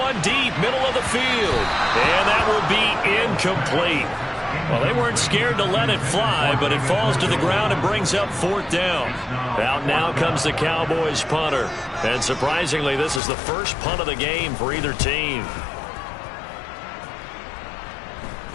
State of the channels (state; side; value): drops out; right; at 13.2 s